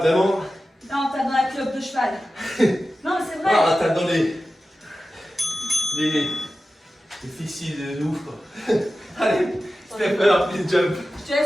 Non, tape dans la clope de cheval. Non, mais c'est vrai. Ah, tape dans les fessiers de ouf, quoi. Allez, step up, please jump. Je te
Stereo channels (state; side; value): normal; both; correlation 0.94